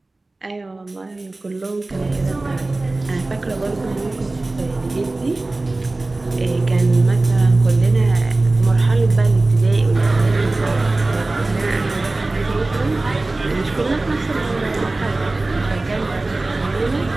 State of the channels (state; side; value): quieter; left; 3.0 dB